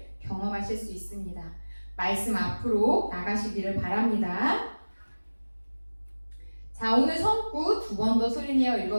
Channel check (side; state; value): both; inverted; correlation -1.00